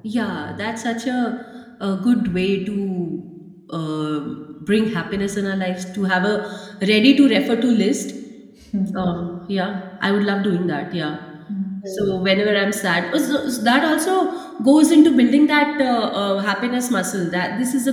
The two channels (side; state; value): both; identical; correlation 1.00